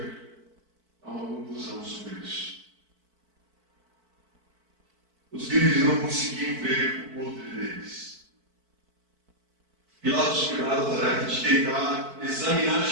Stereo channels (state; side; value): late; left; 4.5 ms